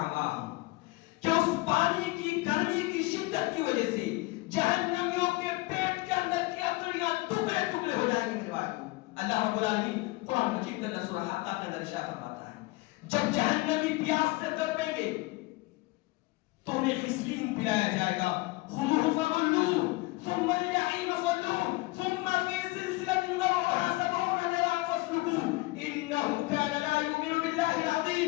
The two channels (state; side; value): quieter; right; 22.3 dB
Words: مَاءَهُمْ, کہ اس پانی کی گرمی کی شدت کی وجہ سے جہنمیوں کے پیٹ کے اندر کی اتریاں ٹکڑے ٹکڑے ہو جائیں گے میرے بھائی. اللہ رب العالمین قرآن مجید کے اندر سورہ حقہ کے اندر ارشاد فرماتا ہے جب جہنمی پیاس سے تڑپیں گے تو انہیں غسلین پلایا جائے گا. خُذُوهُ فَغُلُّوهُ ثم الجحيم صلوه ثم في سلسلة ذرعها 70 ذراعا فاسلكوه إنه كان لا يؤمن بالله